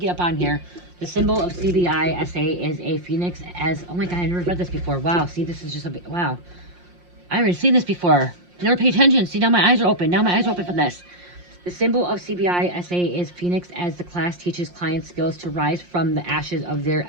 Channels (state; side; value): late; left; 5.6 ms